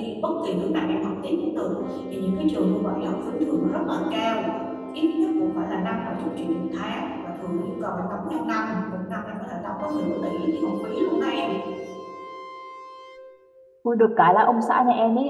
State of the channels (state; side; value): identical; both; correlation 1.00